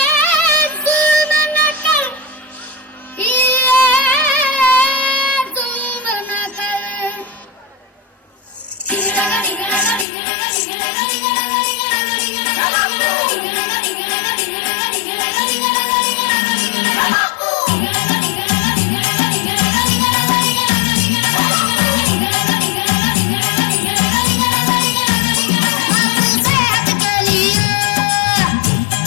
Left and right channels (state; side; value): drops out; right; at 10.1 s